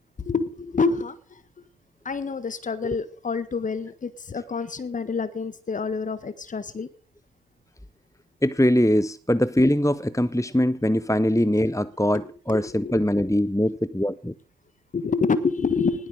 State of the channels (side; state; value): both; normal; correlation 0.83